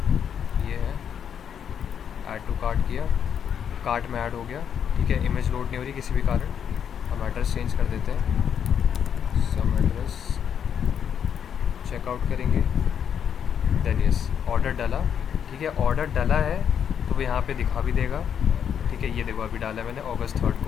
ये है, ऐड टू कार्ट किया, कार्ट में ऐड हो गया, ठीक है, इमेज लोड नहीं हो रही किसी भी कारण, हम एड्रेस चेंज कर देते हैं, सम एड्रेस, चेकआउट करेंगे, देन यस ऑर्डर डाला, ठीक है, ऑर्डर डाला है तो वो यहाँ पे दिखा भी देगा, ठीक है, ये देखो अभी डाला है मैंने August 3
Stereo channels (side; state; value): right; quieter; 8.2 dB